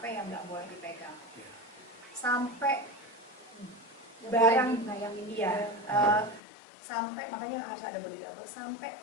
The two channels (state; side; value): drops out; right; at 6.4 s